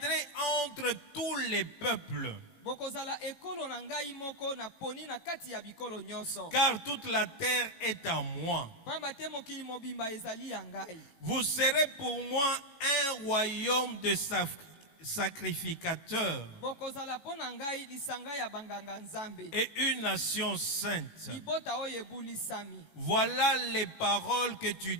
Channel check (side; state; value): right; late; 18 ms